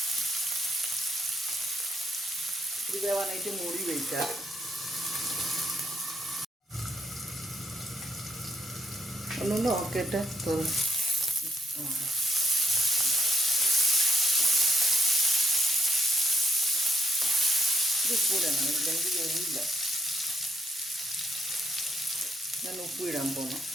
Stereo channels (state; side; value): normal; both; correlation 0.72